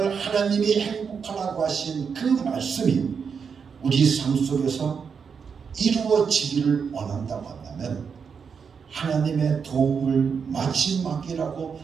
하나님이 행복하라고 하신 그 말씀이 우리 삶 속에서 이루어지기를 원한다고 한다면 하나님의 도움을 마지막이라고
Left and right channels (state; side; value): quieter; left; 6.2 dB